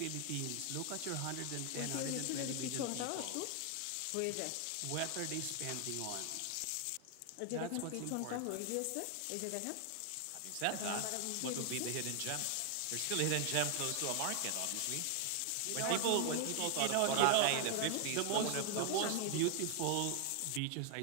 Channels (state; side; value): different; both; correlation 0.00